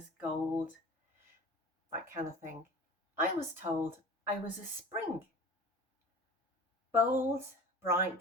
gold, that kind of thing. I was told I was a spring. Bold,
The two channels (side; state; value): both; normal; correlation 0.38